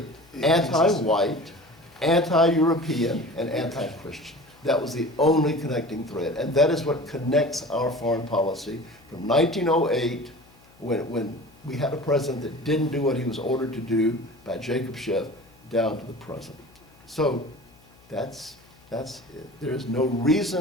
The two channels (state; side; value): noise; left; hum, 28 dB below the sound